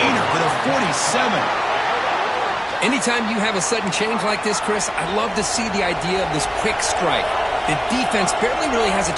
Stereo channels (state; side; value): identical; both; correlation 1.00